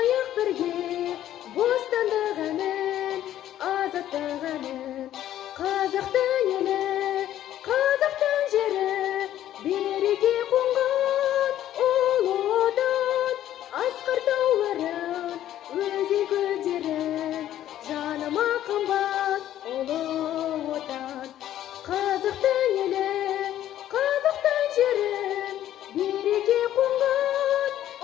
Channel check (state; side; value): quieter; right; 12.2 dB